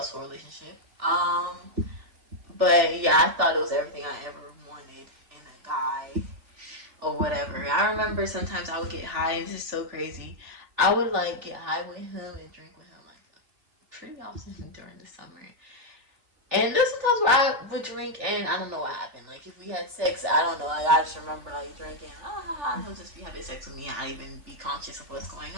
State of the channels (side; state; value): left; late; 3.4 ms